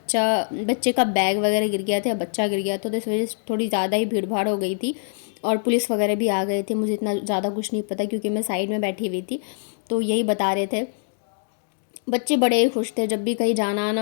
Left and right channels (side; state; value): right; silent; digital silence